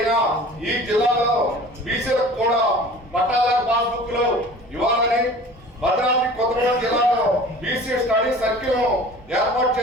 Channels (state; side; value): normal; both; correlation 0.43